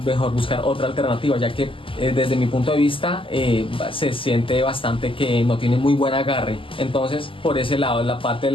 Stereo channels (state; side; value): late; right; 0.25 ms